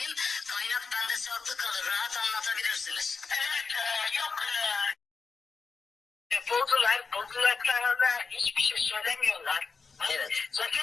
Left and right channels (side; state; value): right; quieter; 4.8 dB